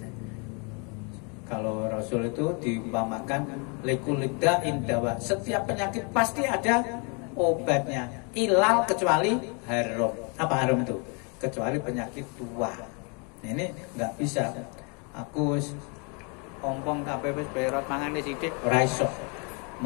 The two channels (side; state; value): right; quieter; 34.7 dB